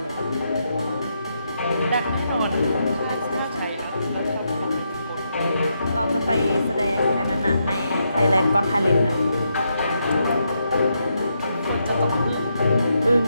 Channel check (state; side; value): inverted; both; correlation -0.81